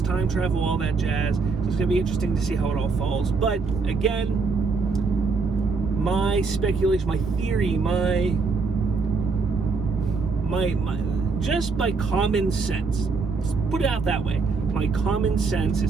time travel, all that jazz. So it's going to be interesting to see how it all falls. But again, my speculation, my theory, my just by common sense, let's put it out that way, my common sense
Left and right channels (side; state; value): left; quieter; 4.5 dB